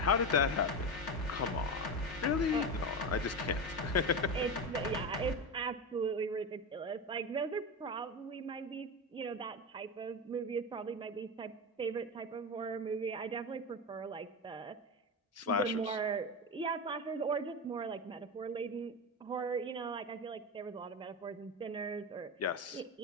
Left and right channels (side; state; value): both; normal; correlation 0.19